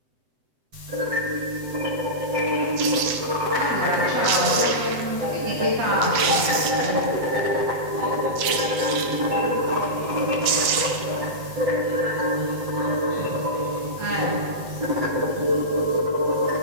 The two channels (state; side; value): late; left; 7.9 ms